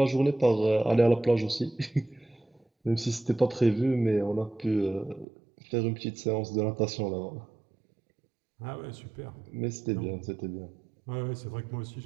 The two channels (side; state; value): left; drops out; at 5.2 s